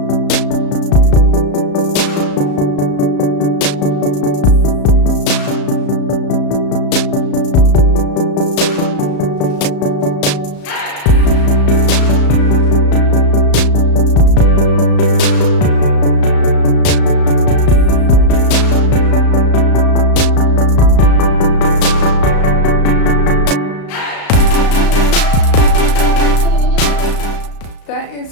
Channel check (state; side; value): late; right; 35 ms